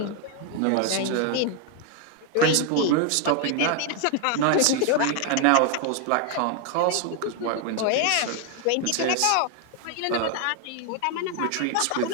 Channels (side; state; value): both; different; correlation 0.00